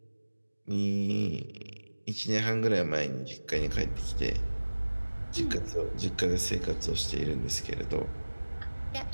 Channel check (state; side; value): inverted; both; correlation -1.00